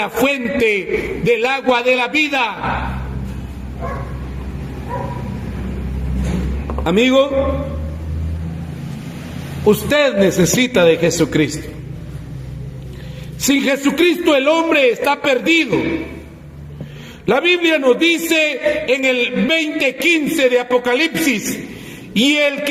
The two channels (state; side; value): identical; both; correlation 1.00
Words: fuente del agua de la vida. Amigo, usted necesita de Jesucristo. Sin Jesucristo el hombre está perdido. La Biblia nos dice en el 20:15 de Apocalipsis: y el